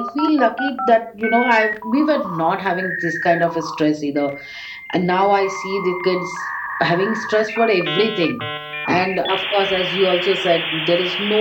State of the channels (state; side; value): identical; both; correlation 1.00